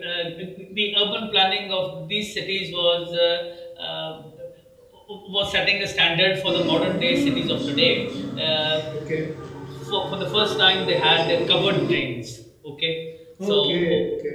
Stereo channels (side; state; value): both; identical; correlation 1.00